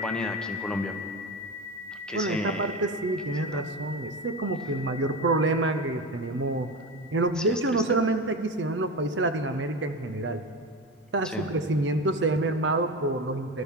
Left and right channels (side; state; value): both; normal; correlation 0.24